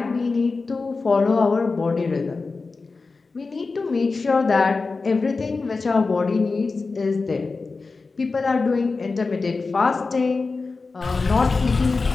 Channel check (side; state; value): right; quieter; 4.1 dB